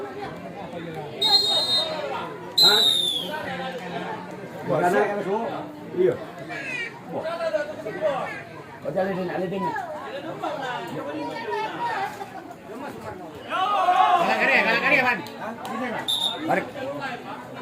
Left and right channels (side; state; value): both; identical; correlation 1.00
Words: Hah? Bukan iya. Kau jalan alidin. Kalah kari, Pan. Tarik.